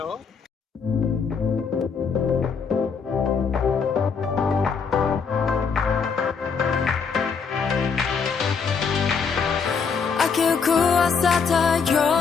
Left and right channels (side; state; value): right; quieter; 5.7 dB